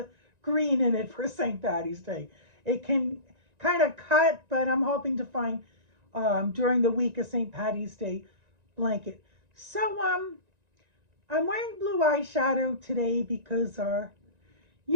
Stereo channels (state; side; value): late; left; 1.9 ms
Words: green in it for St. Patty's Day. It can kind of cut, but I'm hoping to find during the week a St. Patty's Day blanket. So I'm wearing blue eyeshadow today because, I